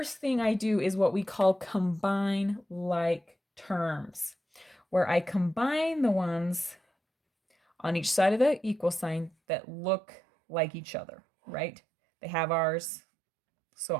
thing I do is what we call combine like terms, where I combine the ones on each side of the equal sign that look like each other, right? They have R's, so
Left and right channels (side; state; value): left; drops out; at 9.3 s